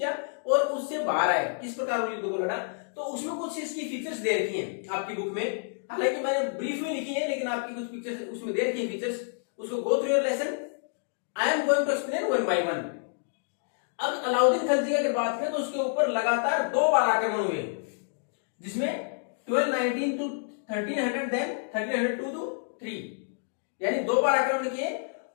और उससे बाहर आए, किस प्रकार युद्ध को लड़ा. तो उसमें कुछ इसकी फीचर्स दे रखी हैं आपकी बुक में, हालांकि मैंने ब्रीफ में लिखी है, लेकिन आपकी कुछ पिक्चर्स उसमें दे रखी है फीचर्स. उसको go through your lesson. I am going to explain one by one. अब अलाउद्दीन खिलजी की अगर बात करें तो उसके ऊपर लगातार 2 बार आक्रमण हुए, जिसमें 1219 to 1300, देन 1302 to 3, यानी 2 बार आक्रमण किए.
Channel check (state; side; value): silent; right; digital silence